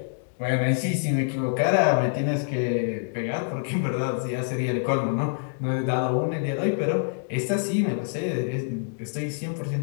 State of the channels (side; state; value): right; silent; digital silence